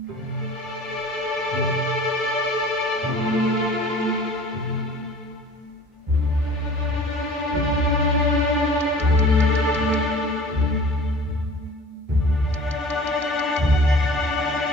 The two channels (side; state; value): both; normal; correlation 0.45